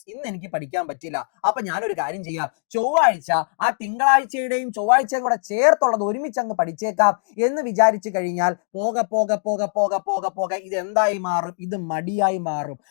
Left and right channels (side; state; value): right; silent; digital silence